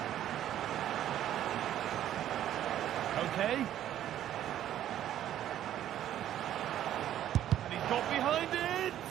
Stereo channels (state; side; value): quieter; left; 11.6 dB